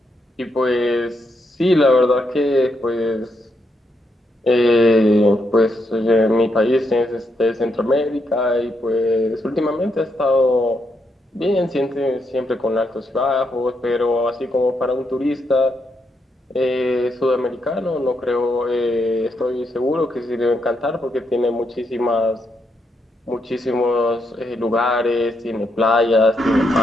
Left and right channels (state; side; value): normal; both; correlation 0.80